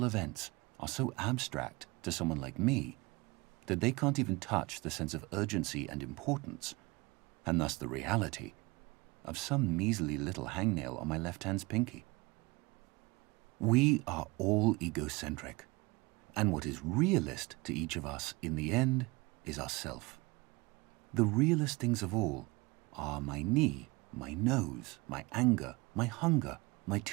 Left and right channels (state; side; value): quieter; left; 24.5 dB